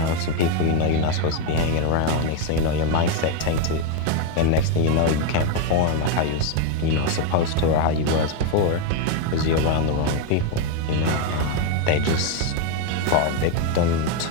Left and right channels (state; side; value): different; both; correlation 0.01